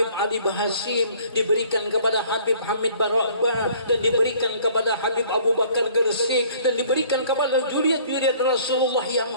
Ali Bahasim, diberikan kepada Habib Hamid Barwakbah, dan diberikan kepada Habib Abu Bakar Gersik, dan diberikan kepada juriat-juriat Rasulullah yang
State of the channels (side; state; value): both; inverted; correlation -0.55